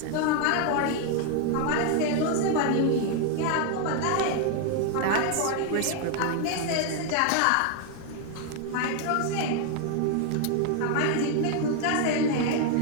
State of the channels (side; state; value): both; different; correlation 0.00